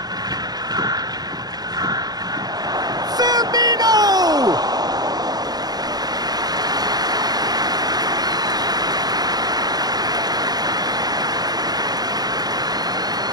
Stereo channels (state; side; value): late; left; 0.19 ms